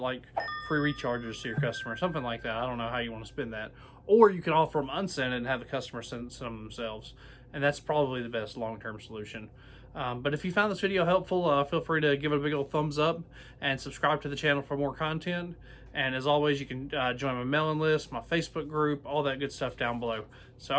free recharges to your customer, something like that. I don't know how you want to spend that. Or you can offer them unscented and have the customer send some themselves. And that's probably the best long-term solution. But if you found this video helpful, feel free to give it a big old thumbs up and subscribe to the channel for more content. And as always, you can join my mailing list, my Facebook group, all that good stuff down below. So,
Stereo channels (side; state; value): both; identical; correlation 1.00